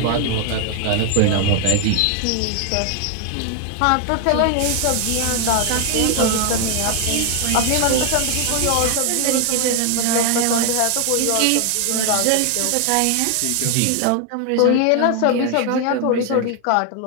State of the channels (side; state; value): both; different; correlation 0.00